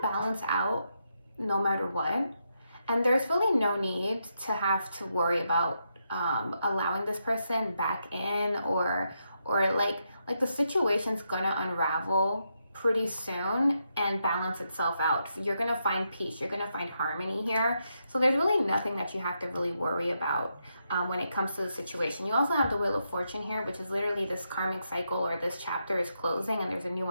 balance out no matter what. And there's really no need to have to worry about allowing this person back in, or like the situation's going to unravel pretty soon and balance itself out. You're going to find peace. You're going to find harmony here. So there's really nothing that you have to really worry about when it comes to the situation. You also have the Wheel of Fortune here, which is literally this karmic cycle, or this chapter is closing and there's a new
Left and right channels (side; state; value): both; inverted; correlation -0.82